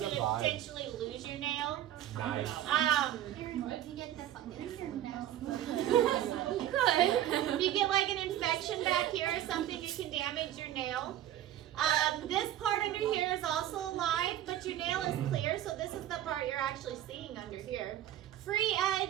you a could vibe. potentially lose your nail. Nice. Aaron, did you get the fungus here now? You could. If you get like an infection back here or something, it can damage your nail. This part under here is also alive, but your nail is clear, so this is the part you're actually seeing under here. Free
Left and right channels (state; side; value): quieter; left; 12.2 dB